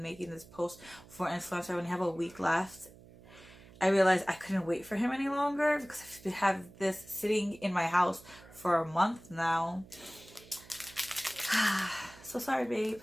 making this post for Influencer, I only have a week left. I realized I couldn't wait for him any longer, because I've had this sitting in my house for a month now. So sorry, babe,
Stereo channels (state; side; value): noise; right; hum, 21 dB below the sound